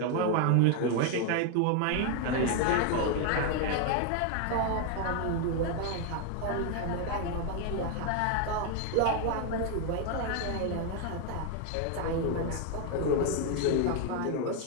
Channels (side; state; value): both; different; correlation 0.01